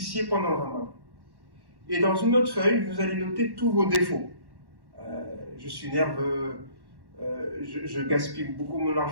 pendant le Ramadan. Et dans une autre feuille, vous allez noter tous vos défauts. Je suis nerveux, je gaspille beaucoup mon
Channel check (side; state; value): left; late; 1.1 ms